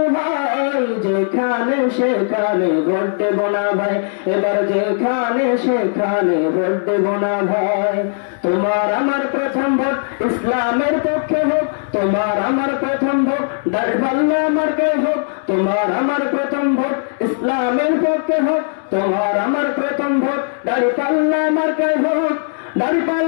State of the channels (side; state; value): right; silent; digital silence